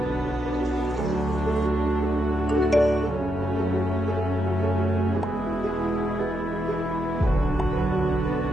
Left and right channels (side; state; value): both; normal; correlation 0.82